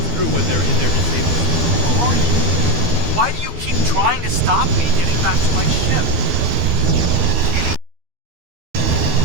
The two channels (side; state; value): left; late; 12 ms